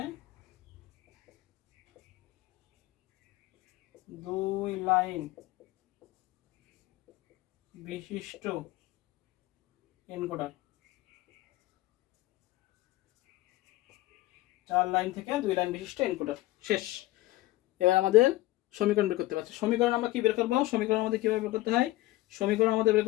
2 লাইন বিশিষ্ট এনকোডার। 4 লাইন থেকে 2 লাইন বিশিষ্ট এনকোডার, শেষ। এবার আমাদের সমীকরণ বের করতে পারছি। সমীকরণ আমরা কি বের করবো? সমীকরণ আমাদের কিভাবে বের করতে হয়? সমীকরণ আমাদের বের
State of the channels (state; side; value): quieter; right; 18.3 dB